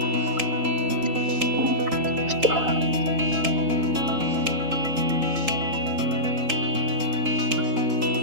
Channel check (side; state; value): left; late; 3.8 ms